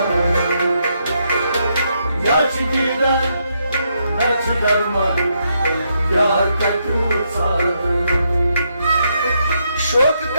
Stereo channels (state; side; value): inverted; both; correlation -0.78